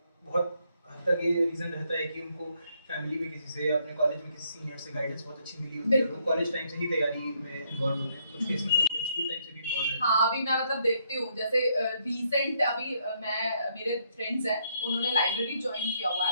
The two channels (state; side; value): inverted; both; correlation -0.72